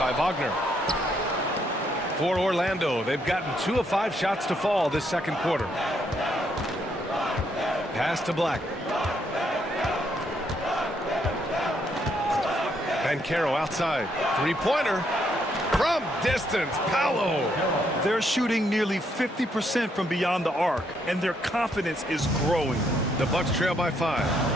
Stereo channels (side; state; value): both; normal; correlation 0.74